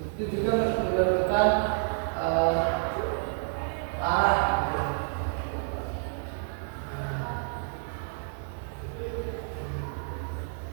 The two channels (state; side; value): silent; left; 58 dB below the other